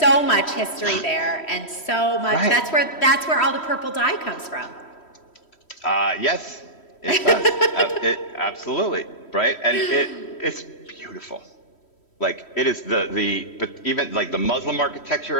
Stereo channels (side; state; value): right; late; 3.1 ms